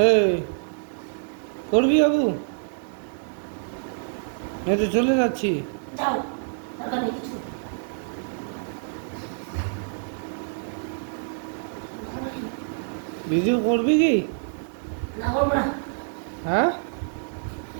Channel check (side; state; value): left; silent; digital silence